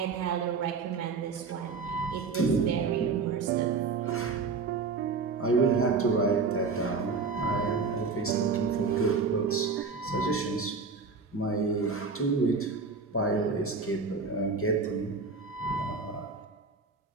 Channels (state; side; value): quieter; left; 4.7 dB